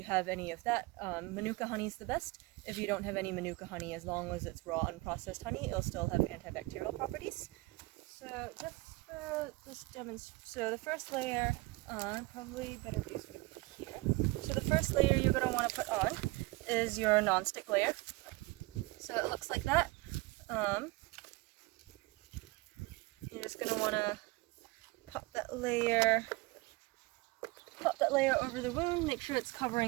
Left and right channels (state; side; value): quieter; left; 23.1 dB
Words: have any of that, Manuka honey is the best. If you don't have any Manuka honey, as long as it's raw unprocessed honey, it'll still have antibacterial properties. So just for this demonstration, so the first layer, probably better view is going to be here. So the first layer you're going to want to put on is your non-stick layer. So it looks like that. You're just going to want to pop that layer over the wound, make sure it's